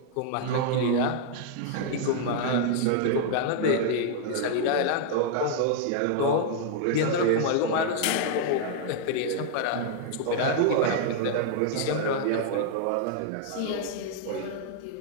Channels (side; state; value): both; different; correlation 0.00